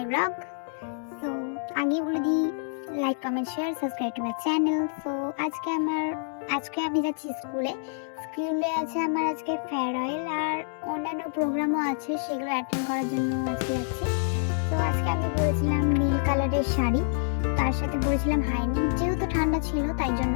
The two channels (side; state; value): right; silent; 60 dB below the other